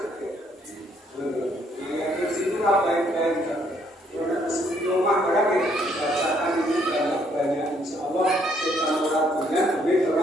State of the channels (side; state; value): both; normal; correlation 0.68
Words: Ayat kursi itu baik-baik. Karena di rumah barang bacaan ini banyak insya Allah kita melakukannya lebih